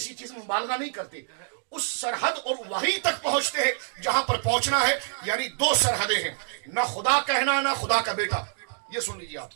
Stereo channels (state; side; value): silent; left; digital silence